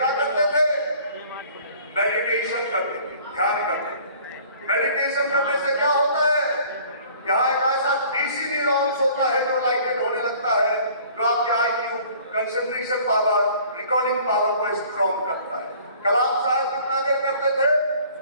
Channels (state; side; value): inverted; both; correlation -0.52